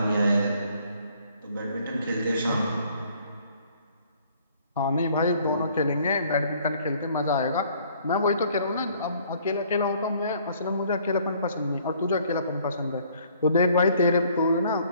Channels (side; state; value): both; inverted; correlation -0.60